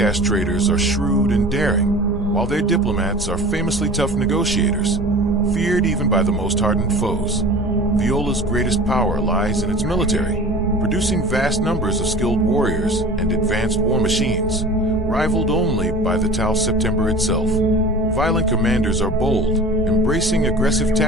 traders are shrewd and daring, while their diplomats are famously tough negotiators, feared even by the most hardened foes. Viola's greatest power lies in its military, producing vast numbers of skilled warriors and advanced war machines, rivaled only by the Tau September itself. Violent commanders are bold, embracing aggressive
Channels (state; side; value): normal; both; correlation 0.39